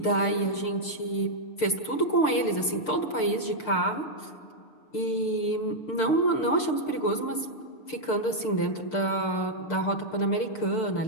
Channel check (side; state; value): right; late; 6.5 ms